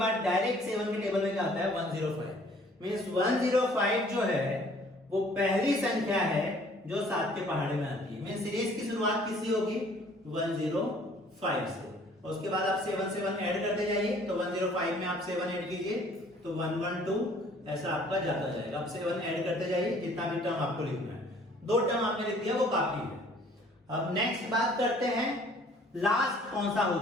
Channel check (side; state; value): both; normal; correlation 0.56